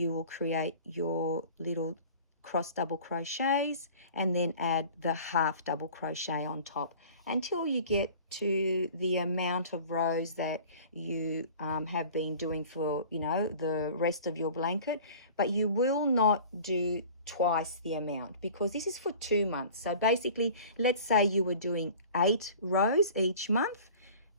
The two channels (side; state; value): both; inverted; correlation -0.44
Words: will create your little cross double crochets and then add the half double crochet on top until you get to the amount of rows that you have been doing for, you know, the rest of your blanket. But you will not do twice the amount because this is for 2 months. So basically, let's say you were doing 8 rows each month.